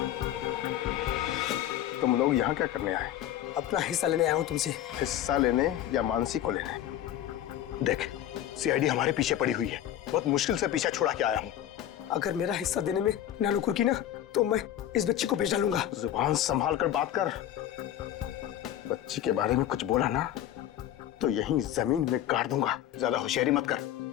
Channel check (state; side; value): quieter; right; 11.7 dB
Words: तुम लोग यहाँ क्या करने आए? अपना हिस्सा लेने आया हूँ तुमसे। हिस्सा लेने या मानसी को लेने? देख, सीआईडी हमारे पीछे पड़ी हुई है। बहुत मुश्किल से पीछा छुड़ा के आया हूँ। अगर मेरा हिस्सा देने में नानुकुर की ना तो मैं इस बच्ची को बेच डालूंगा। जुबान संभाल कर बात कर। बच्ची के बारे में कुछ बोला ना तो यहीं जमीन में गाड़ दूंगा। ज्यादा होशियारी मत कर,